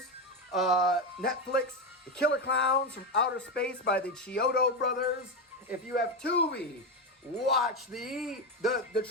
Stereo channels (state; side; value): normal; both; correlation 0.12